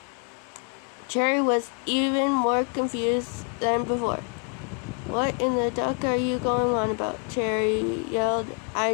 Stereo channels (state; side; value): quieter; right; 40.0 dB